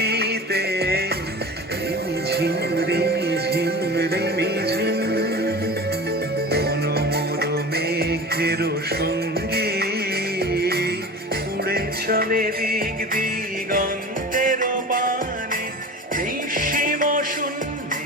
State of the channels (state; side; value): normal; both; correlation 0.34